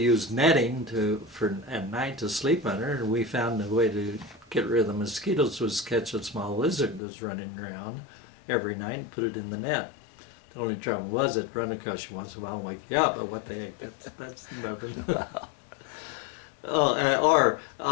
netting for at night to sleep under, and we found a way to get rid of the mosquitoes was catch a small lizard that was running around every night and put it in the net. The only trouble was it'd run across you once in a while and wake you up, but what the heck, that's nothing. Or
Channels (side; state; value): right; drops out; at 7.0 s